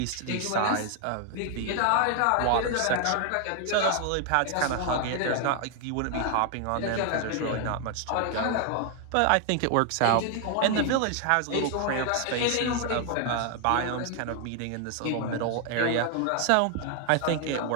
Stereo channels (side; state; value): both; different; correlation 0.00